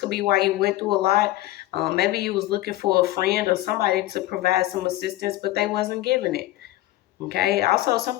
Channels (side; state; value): right; quieter; 16.5 dB